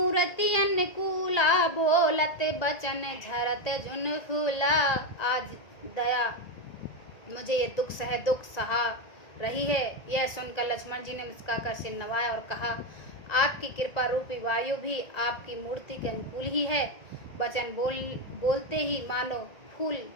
अनुकूला, बोलत बचन झरत झुन फूला। आज दया मुझे ये दुख सहा रही है। यह सुनकर लक्ष्मण जी ने मुस्कुराकर सिर नवाया और कहा, आपकी कृपा रूपी वायु भी आपकी मूर्ति के अनुकूल ही है। वचन बोलते ही मानो फूल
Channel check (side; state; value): right; late; 1.9 ms